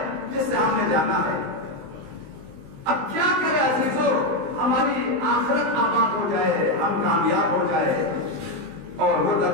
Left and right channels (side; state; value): left; late; 19 ms